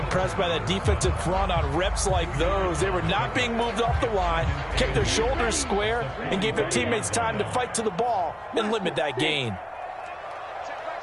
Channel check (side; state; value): both; identical; correlation 1.00